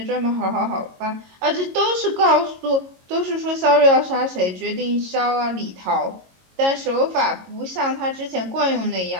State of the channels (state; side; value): late; left; 22 ms